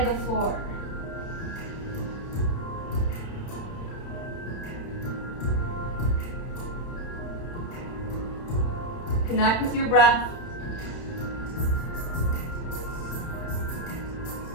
to the floor. Connect with your breath.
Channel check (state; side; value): late; right; 31 ms